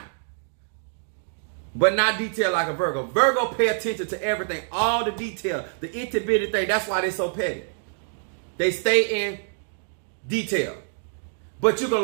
but not detailed like a Virgo. Virgo pay attention to everything, all the detail, the itty-bitty thing. That's why they're so petty. They stay in detail. But you can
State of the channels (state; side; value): silent; left; digital silence